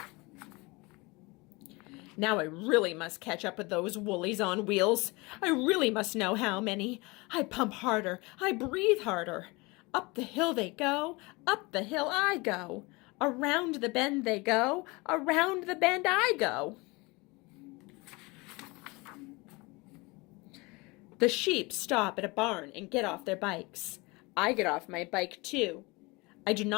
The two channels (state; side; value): quieter; right; 25.2 dB